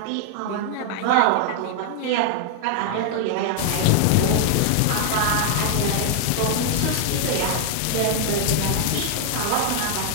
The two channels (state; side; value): different; both; correlation 0.00